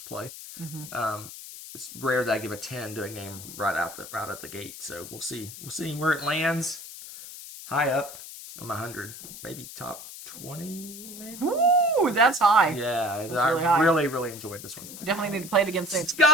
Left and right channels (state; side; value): noise; left; hiss, 13 dB below the sound